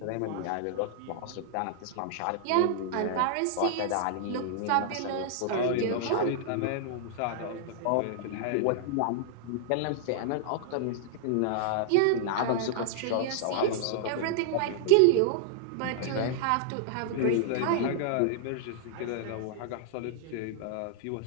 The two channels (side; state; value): both; different; correlation -0.01